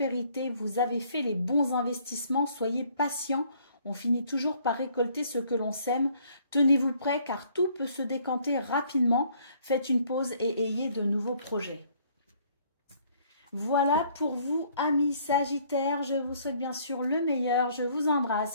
Vous avez fait les bons investissements, soyez patient. On finit toujours par récolter ce que l'on sème. Tenez-vous prêt car tout peut se décanter rapidement. Faites une pause et ayez de nouveaux projets. Voilà pour vous, amis Sagittaires. Je vous souhaite bien sûr le meilleur. Je vous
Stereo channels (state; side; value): inverted; both; correlation -0.62